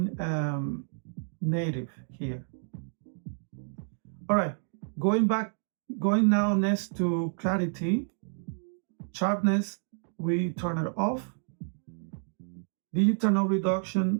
native here. All right, going now next to clarity. Sharpness, we turn it off. Digital no reduction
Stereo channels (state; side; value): silent; left; digital silence